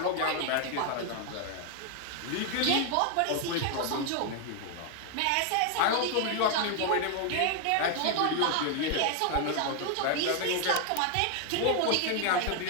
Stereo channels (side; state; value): both; different; correlation 0.00